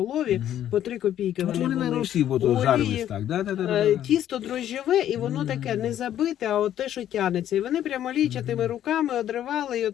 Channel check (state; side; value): quieter; right; 11.2 dB